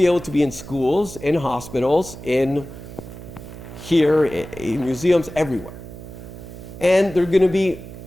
able to be in schools, in hospitals, in museums, everywhere. And they're going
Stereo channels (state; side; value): noise; right; hum, 14 dB below the sound